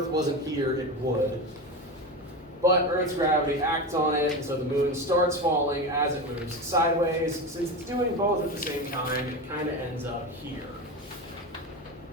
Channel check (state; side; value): normal; both; correlation 0.22